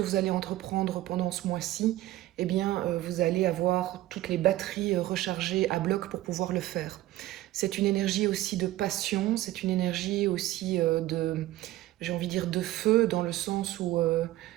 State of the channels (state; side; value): quieter; left; 15.9 dB